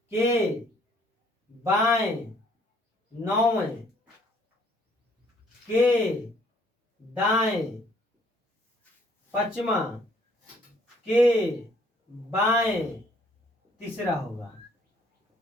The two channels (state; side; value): normal; both; correlation 0.63